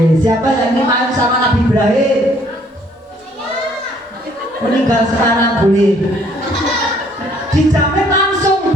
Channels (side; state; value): both; normal; correlation 0.62